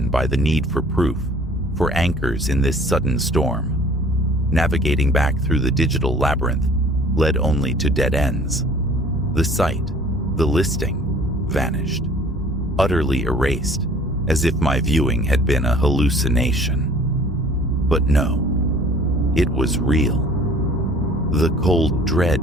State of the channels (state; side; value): normal; both; correlation 0.51